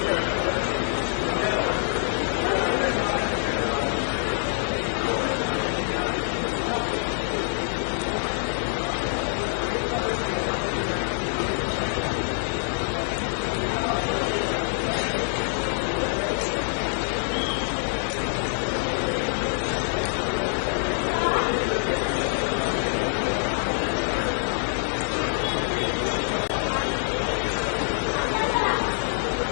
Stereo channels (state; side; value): silent; right; digital silence